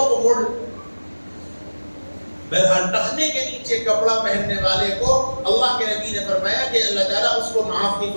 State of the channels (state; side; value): inverted; both; correlation -1.00